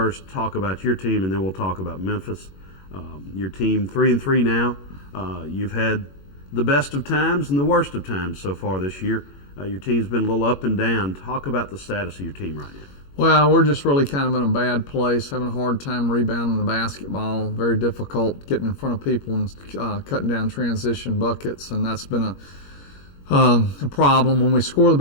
talk about your team, and then we'll talk about Memphis. Your team 3-3 now. You've had the best of times and the worst of times so far this year. Your team's been a little up and down. Talk about the status of your team right now. Well, we're just really kind of in a bad place, having a hard time rebounding the basketball, very difficult getting in front of people and cutting down transition buckets, and that's been a problem. When we score the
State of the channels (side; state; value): right; late; 21 ms